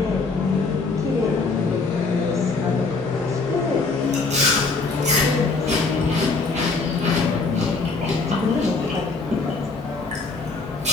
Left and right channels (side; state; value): right; quieter; 4.0 dB